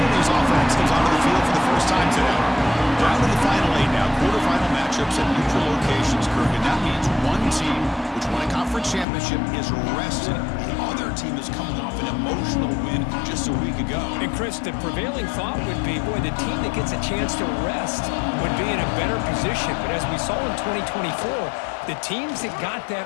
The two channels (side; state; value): right; drops out; at 9.1 s